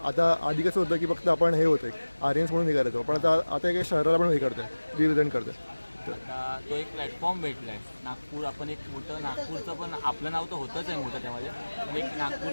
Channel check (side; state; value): both; inverted; correlation -1.00